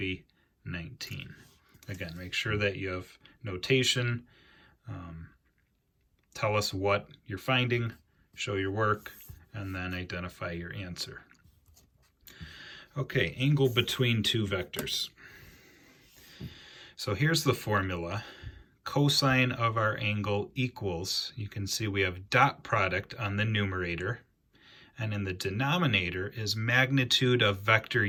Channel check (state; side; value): identical; both; correlation 1.00